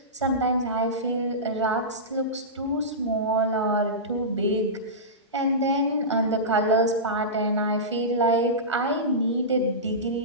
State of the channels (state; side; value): normal; both; correlation -0.17